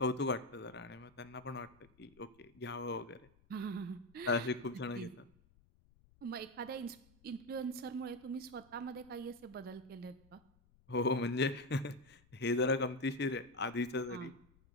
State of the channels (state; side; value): noise; left; rumble, 28 dB below the sound